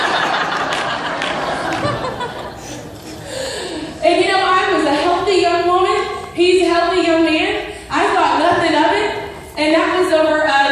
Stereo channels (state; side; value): identical; both; correlation 1.00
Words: And I was a healthy young woman. He's a healthy young man. I thought nothing of it. And that was over